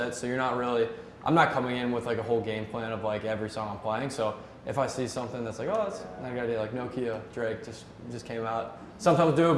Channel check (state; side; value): identical; both; correlation 1.00